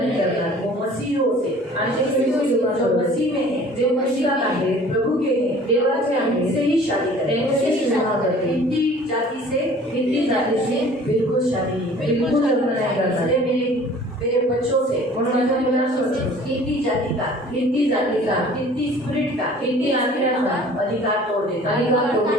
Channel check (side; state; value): both; normal; correlation 0.49